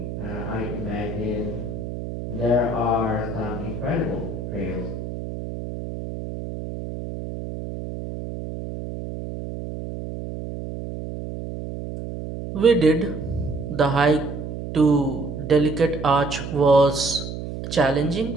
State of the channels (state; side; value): noise; right; hum, 7 dB below the sound